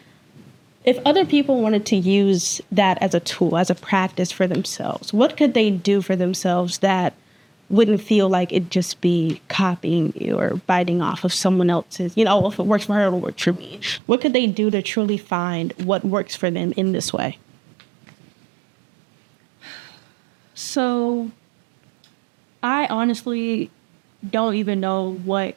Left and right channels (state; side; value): drops out; left; at 14.0 s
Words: If other people wanted to use that as a tool, as a practice for themselves, what could they do for themselves that wouldn't feel like it'd just be copying you or biting off of someone else's, if it works for her, it'll work for me. What could they do to truly find what works for them in this way? So I honestly don't even know what